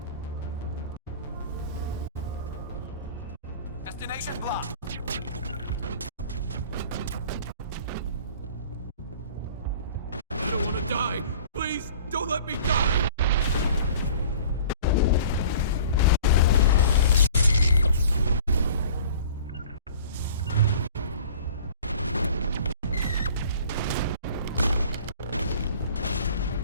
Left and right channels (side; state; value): both; inverted; correlation -0.46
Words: Destination blocked! I don't want to die! Please, don't let me die!